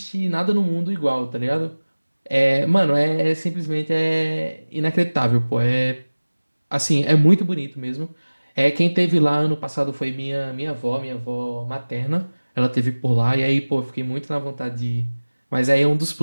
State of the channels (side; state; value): both; inverted; correlation -1.00